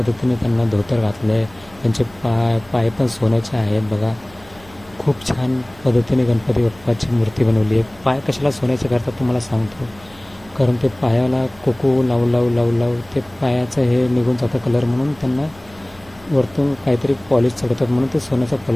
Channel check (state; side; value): noise; right; hum, 25 dB below the sound